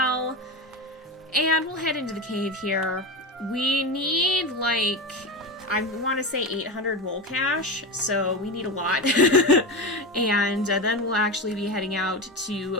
And we'll head into the cave here. We need, like, I want to say 800 mole cash, so we need a lot. And then we'll actually be heading out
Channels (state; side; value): normal; both; correlation 0.20